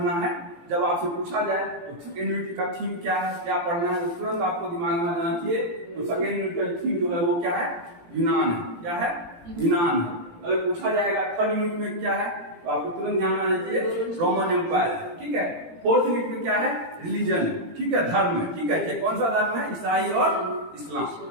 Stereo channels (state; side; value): late; left; 17 ms